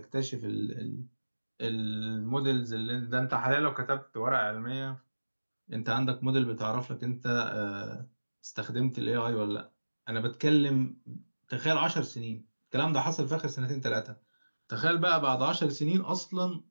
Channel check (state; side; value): inverted; both; correlation -1.00